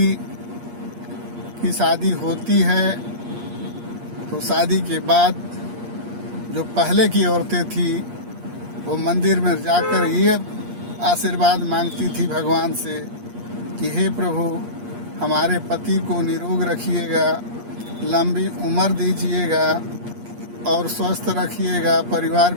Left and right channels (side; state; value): left; late; 8.5 ms